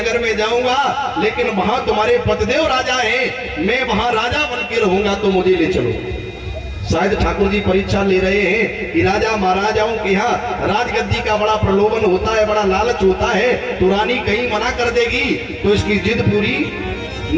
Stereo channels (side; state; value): both; identical; correlation 1.00